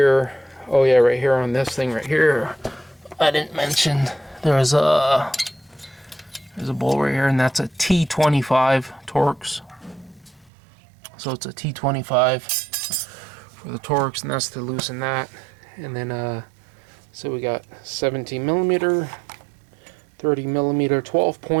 Oh yeah, right here on this thing right here. I didn't mention there's a bolt right here, and that's a T25 Torx. So it's a T25 for the Torx, and that's to loosen that. And then, so we got 17 millimeter, 30 millimeter 12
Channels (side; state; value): left; drops out; at 10.5 s